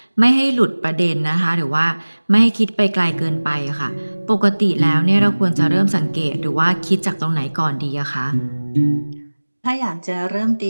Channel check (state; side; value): inverted; both; correlation -1.00